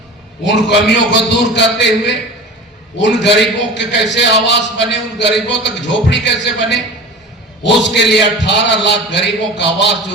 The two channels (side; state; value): both; normal; correlation 0.35